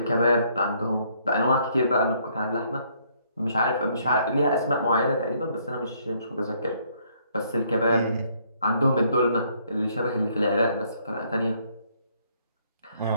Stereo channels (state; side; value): inverted; both; correlation -0.67